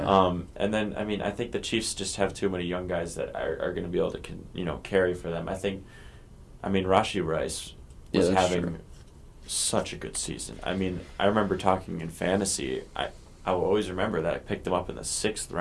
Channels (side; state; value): both; identical; correlation 1.00